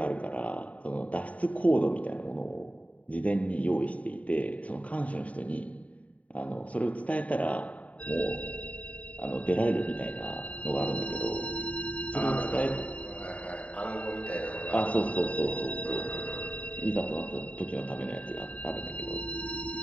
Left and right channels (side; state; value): right; late; 0.068 ms